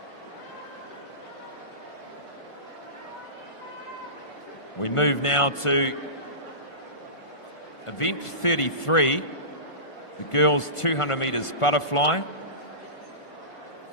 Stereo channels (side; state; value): right; late; 1.5 ms